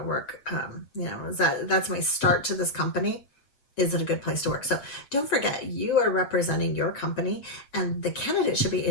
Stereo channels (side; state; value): right; late; 7.0 ms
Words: work? That's my start to this company. Is it a good place to work? So don't forget, you are representing your company, and the candidate should be